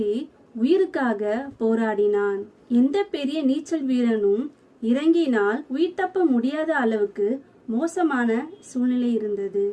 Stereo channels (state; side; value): identical; both; correlation 1.00